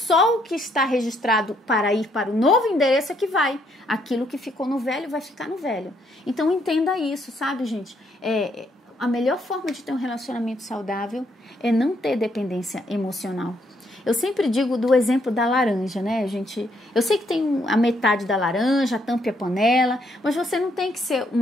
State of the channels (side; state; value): both; normal; correlation 0.72